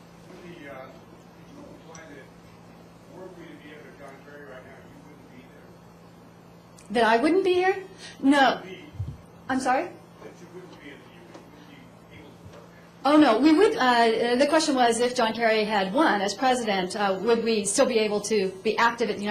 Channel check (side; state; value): both; identical; correlation 1.00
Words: Wendy, you implied that were we to be able to John Kerry right now, you wouldn't be there. That I wouldn't be here? No. I'm sorry? That you wouldn't be at the UN, you wouldn't be able to work there. Oh, no, we would, the question was if John Kerry had won as president, would we still be able to be active at the